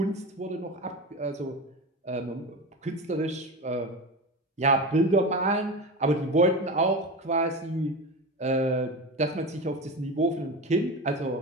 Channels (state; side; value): normal; both; correlation 0.25